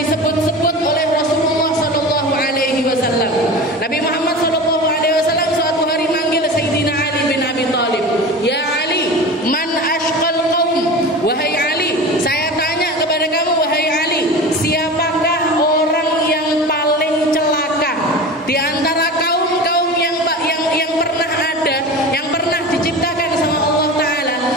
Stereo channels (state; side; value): normal; both; correlation 0.31